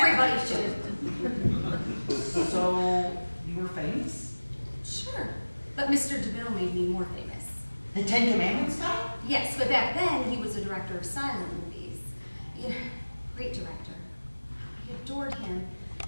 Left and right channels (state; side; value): inverted; both; correlation -1.00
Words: should. So, you were famous? Sure. But Mr. DeMille made me more famous. The Ten Commandments guy? Yes, but back then he was a director of silent movies. Yeah, great director. I adored him.